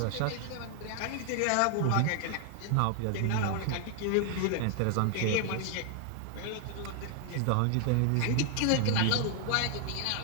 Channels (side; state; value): both; different; correlation 0.00